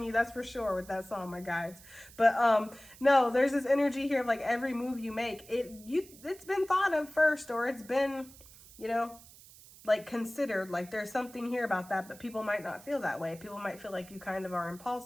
you, that's for sure with that song, my guides. But no, there's this energy here of like every move you make, it's been thought of first, or it's been, you know, like considered. Like there's something here about that, but people might not feel that way. People might feel like you kind of are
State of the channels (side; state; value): right; noise; hiss, 21 dB below the sound